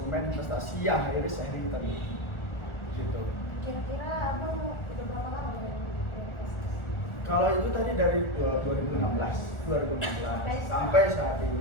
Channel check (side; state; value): right; late; 1.4 ms